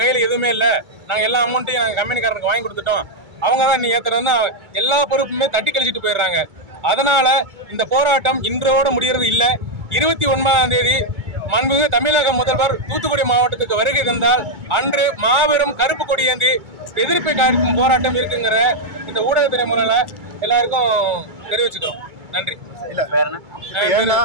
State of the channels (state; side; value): late; left; 2.3 ms